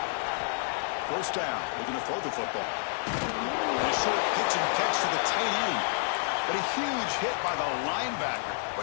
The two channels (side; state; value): right; silent; digital silence